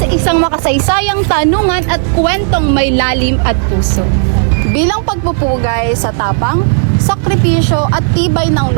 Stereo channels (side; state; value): left; silent; digital silence